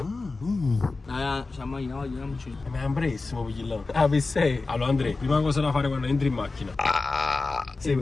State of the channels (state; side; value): quieter; right; 3.7 dB